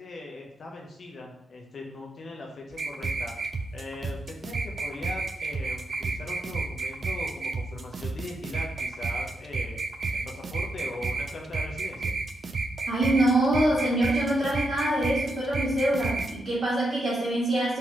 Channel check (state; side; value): normal; both; correlation 0.83